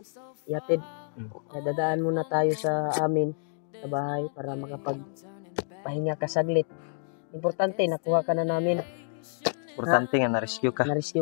yatid. Kaya dadaan muna tayo sa amin sa bahay para makapagpahinga ka saglit. Importante, nakuha ka na namin. Importante nga na-rescue ka. Na-rescue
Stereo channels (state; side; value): silent; right; digital silence